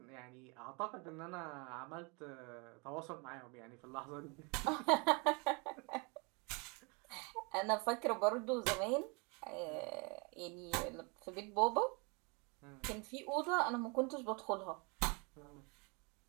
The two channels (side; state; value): left; quieter; 31.2 dB